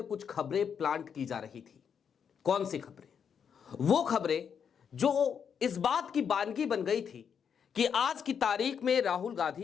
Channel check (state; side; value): quieter; right; 7.3 dB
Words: कुछ खबरें प्लांट की जा रही थी। कौन सी खबरें? वो खबरें जो इस बात की बानगी बन गई थी कि आज की तारीख में राहुल